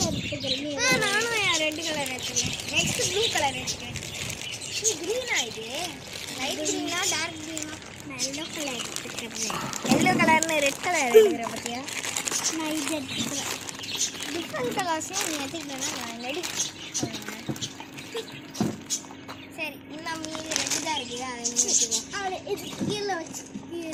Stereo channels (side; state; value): both; identical; correlation 1.00